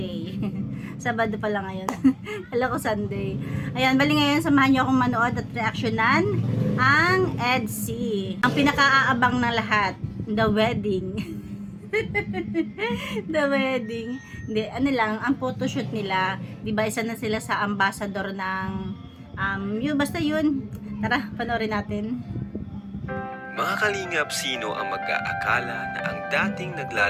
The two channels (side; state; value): both; identical; correlation 1.00